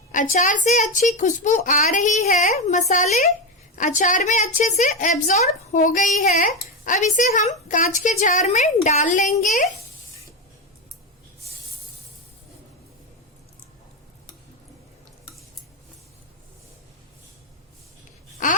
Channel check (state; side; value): normal; both; correlation 0.12